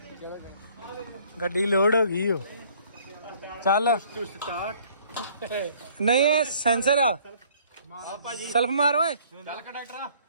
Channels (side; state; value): both; inverted; correlation -0.58